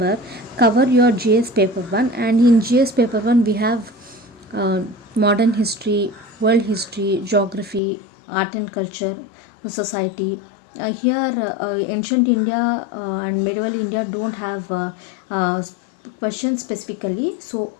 cover your GS paper 1. And in GS paper 1 we have modern history, world history, geography, art and culture, society. Here ancient India and medieval India don't have questions specifically, so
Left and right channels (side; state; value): right; drops out; at 7.8 s